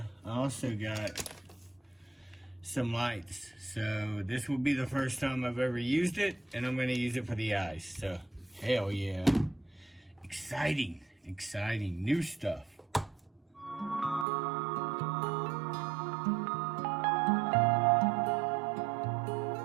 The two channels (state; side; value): drops out; left; at 14.2 s